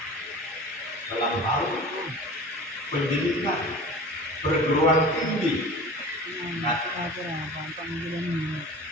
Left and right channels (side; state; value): both; normal; correlation 0.38